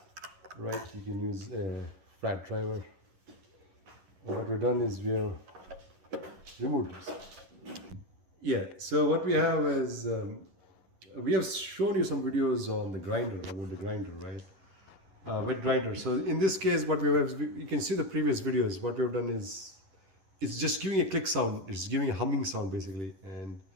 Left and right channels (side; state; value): left; late; 11 ms